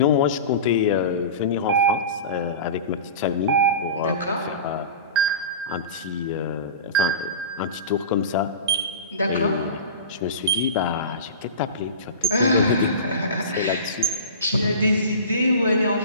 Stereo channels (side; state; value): both; inverted; correlation -0.32